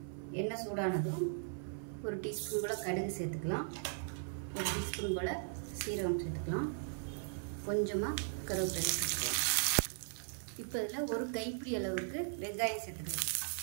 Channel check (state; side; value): silent; left; 52 dB below the other